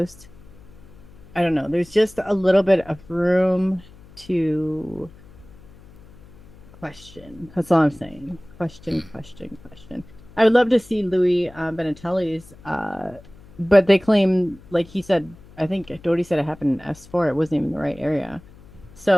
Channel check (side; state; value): left; noise; hum, 22 dB below the sound